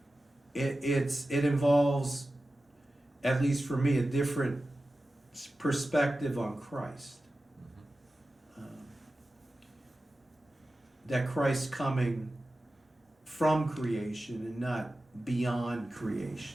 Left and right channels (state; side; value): normal; both; correlation 0.94